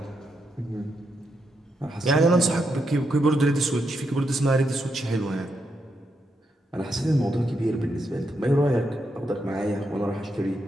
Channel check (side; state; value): both; normal; correlation 0.82